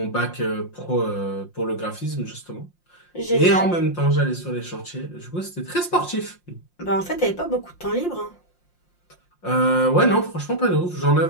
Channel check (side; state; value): right; late; 5.7 ms